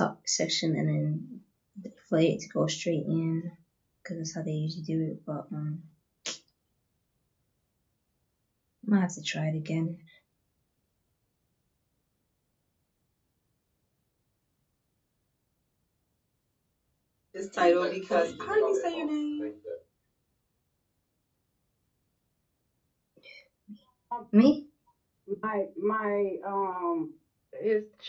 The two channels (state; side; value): identical; both; correlation 1.00